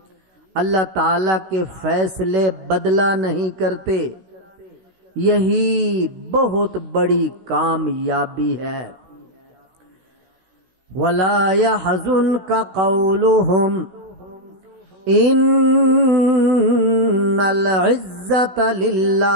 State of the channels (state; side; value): late; left; 16 ms